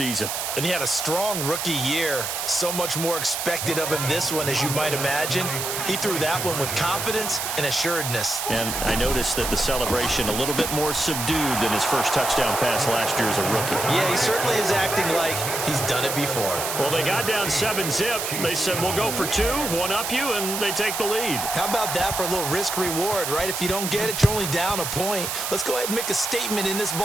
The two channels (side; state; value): right; noise; hiss, 3 dB below the sound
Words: And he had a strong rookie year. So much more expected of him this one, as you might imagine. He threw that one with confidence and assuredness. And I noticed that the celebration a little bit more subdued than his first touchdown pass last year as a rookie. Yeah, he certainly is acting like he's done it before. Well, they got down 7-zip. They said, we'll go for 2, one up you, and they take the lead. How about that for a little risk-reward, right? If you don't get it, you're only down a point. Let's go ahead and make a statement in this